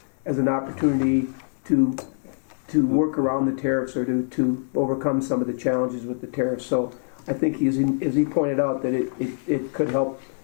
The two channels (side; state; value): right; silent; 62 dB below the other